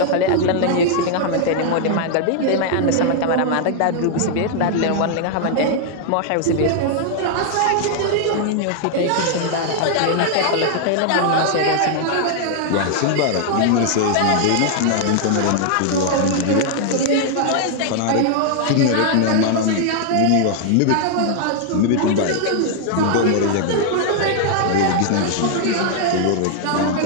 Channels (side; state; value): both; different; correlation 0.00